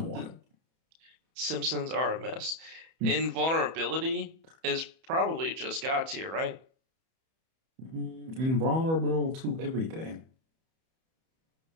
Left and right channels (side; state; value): left; late; 31 ms